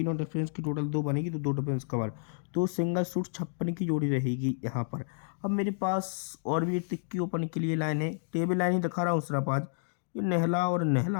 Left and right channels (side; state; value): right; silent; digital silence